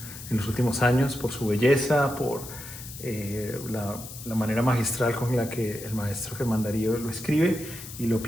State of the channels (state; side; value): noise; left; hiss, 13 dB below the sound